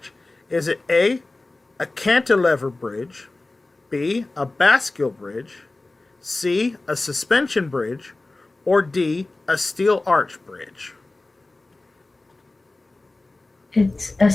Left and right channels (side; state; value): right; quieter; 3.1 dB